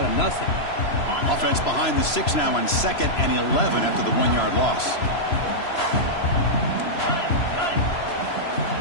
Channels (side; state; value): right; late; 3.0 ms